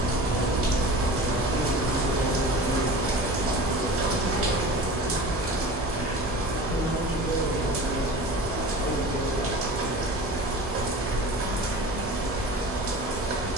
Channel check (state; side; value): normal; both; correlation 0.36